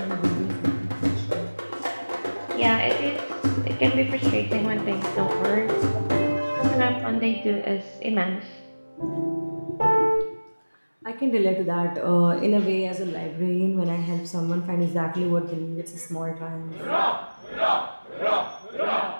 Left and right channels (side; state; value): both; inverted; correlation -1.00